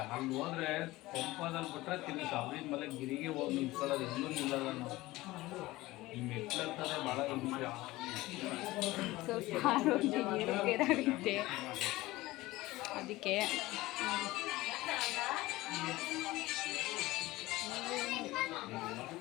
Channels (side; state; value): right; quieter; 18.8 dB